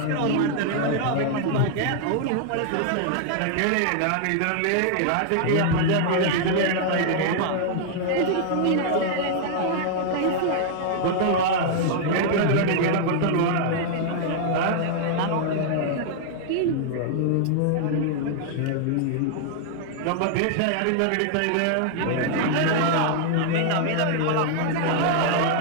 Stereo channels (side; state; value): both; different; correlation -0.01